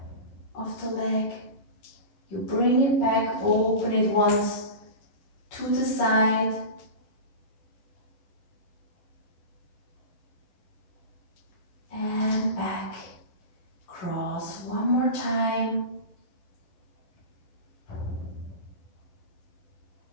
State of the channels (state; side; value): late; right; 11 ms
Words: of the leg. You bring it back, open it once to the side. And back. Cross one more time.